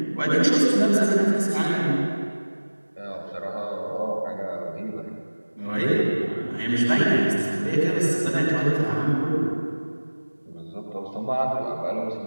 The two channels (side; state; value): both; inverted; correlation -1.00